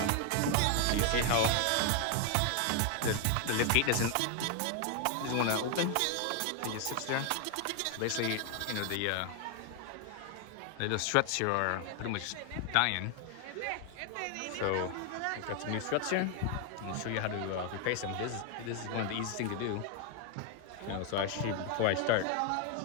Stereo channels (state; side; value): different; both; correlation 0.00